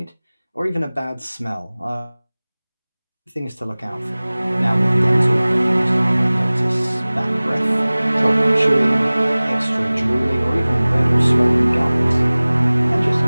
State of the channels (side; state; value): both; inverted; correlation -0.99